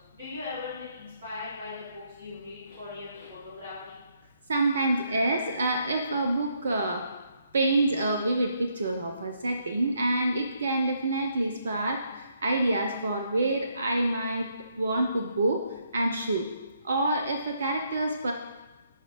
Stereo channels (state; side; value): inverted; both; correlation -0.74